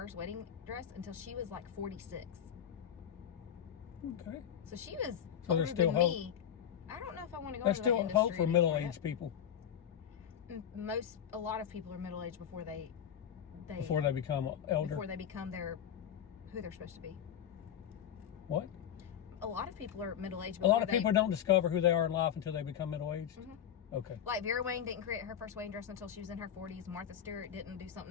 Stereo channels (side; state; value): right; quieter; 9.2 dB